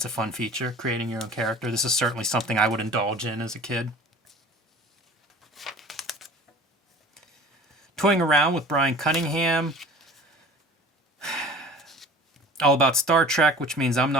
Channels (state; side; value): normal; both; correlation 0.43